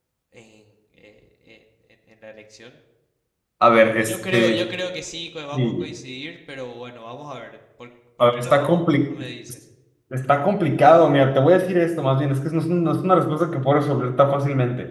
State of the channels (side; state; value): both; identical; correlation 1.00